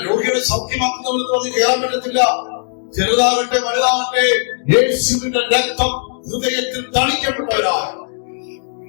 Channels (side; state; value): right; silent; 68 dB below the other